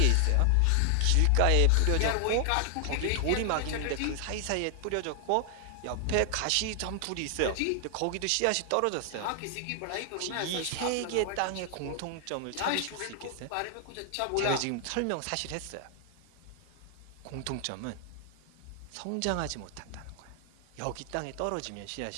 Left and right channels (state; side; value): different; both; correlation 0.00